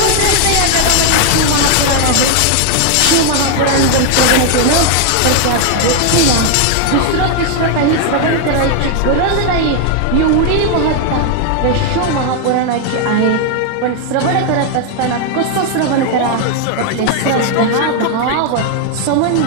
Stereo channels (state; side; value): different; both; correlation 0.00